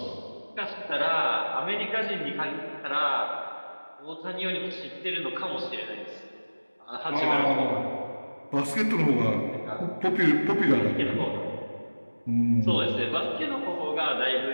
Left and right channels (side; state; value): both; inverted; correlation -1.00